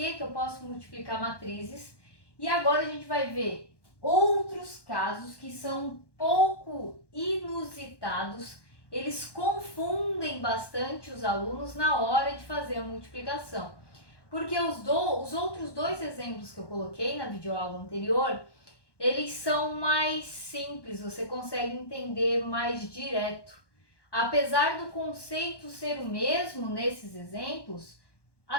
eu posso multiplicar matrizes. E agora a gente vai ver outros casos que são um pouco inusitados, eles confundem bastante os alunos na hora de fazer a multiplicação. Porque os outros dois exemplos que eu coloquei na videoaula anterior, eles são mais simples, você consegue entender mais direto. Apesar do conceito ser o mesmo nesses exemplos,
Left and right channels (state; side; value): late; right; 1.1 ms